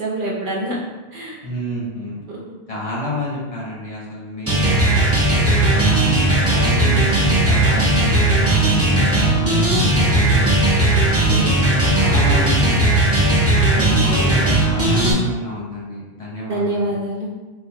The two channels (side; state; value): both; normal; correlation 0.21